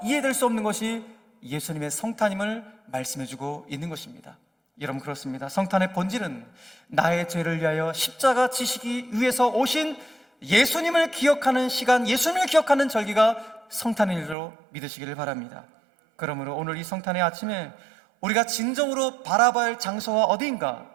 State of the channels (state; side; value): drops out; left; at 14.4 s